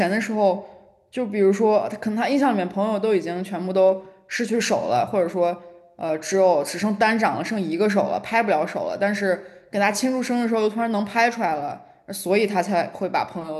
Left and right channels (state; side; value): identical; both; correlation 1.00